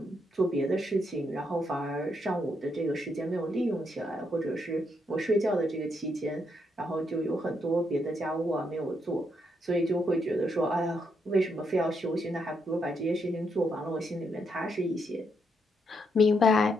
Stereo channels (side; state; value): both; normal; correlation 0.78